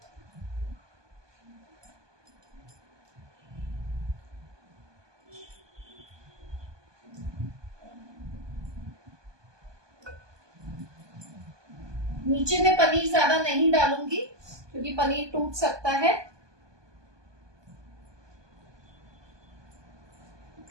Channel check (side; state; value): left; late; 1.2 ms